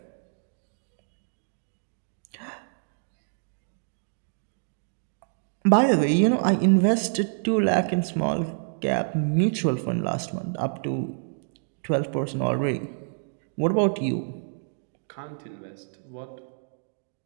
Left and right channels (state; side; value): silent; left; digital silence